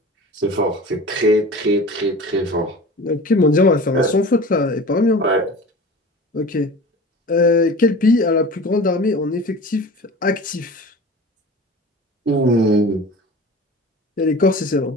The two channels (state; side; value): normal; both; correlation 0.37